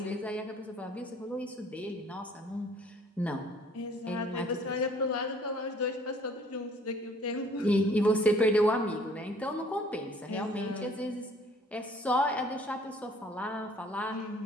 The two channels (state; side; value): normal; both; correlation 0.56